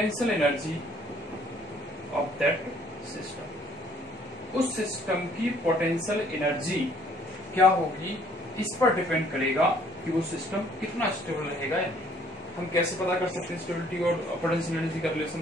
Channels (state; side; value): normal; both; correlation 0.61